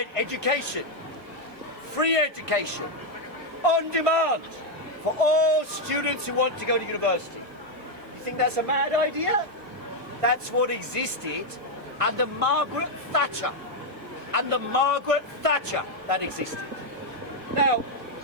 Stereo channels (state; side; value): late; left; 1.5 ms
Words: education, free education, on demand, for all students who want to go to university. You think that's a mad idea? That's what existed under Margaret Thatcher. Under Margaret Thatcher, that existed. Now,